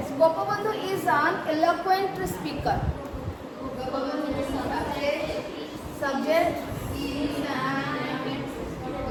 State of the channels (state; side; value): identical; both; correlation 1.00